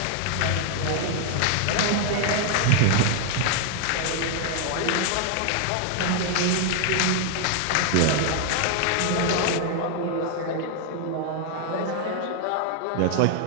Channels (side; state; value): both; different; correlation 0.00